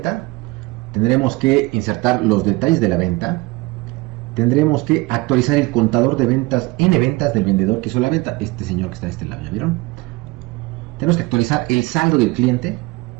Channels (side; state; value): left; quieter; 22.7 dB